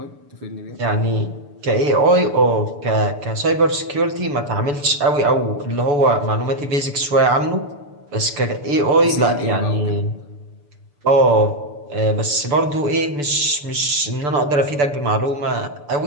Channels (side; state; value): left; late; 6.9 ms